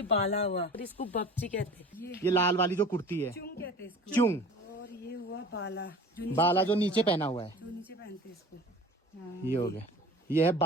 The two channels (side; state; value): both; normal; correlation 0.41